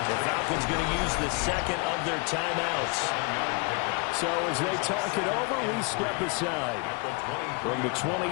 The Falcons going to use the 2nd of their timeouts. So as they talk it over, we step aside. From the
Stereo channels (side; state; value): right; quieter; 31.7 dB